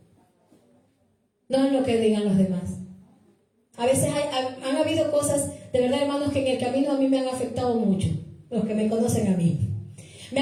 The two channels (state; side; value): identical; both; correlation 1.00